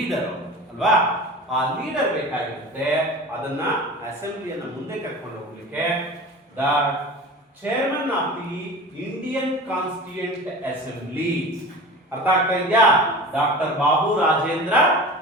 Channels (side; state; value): both; normal; correlation 0.35